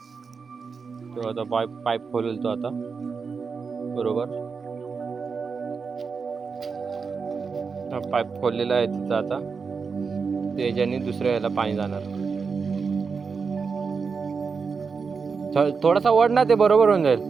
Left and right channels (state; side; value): quieter; left; 5.3 dB